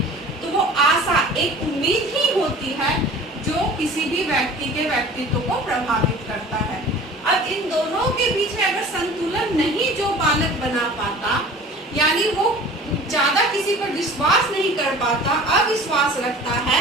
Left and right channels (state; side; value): normal; both; correlation 0.43